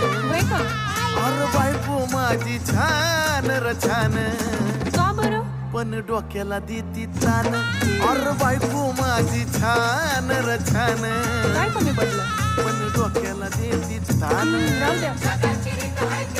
होय का? अरे बायको माझी छान र छान, का बरं? पण डोक्याला देती तान. अरे बायको माझी छान र छान, काय कमी पडलं? पण डोक्याला देती तान. राहू द्या.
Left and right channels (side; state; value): both; identical; correlation 1.00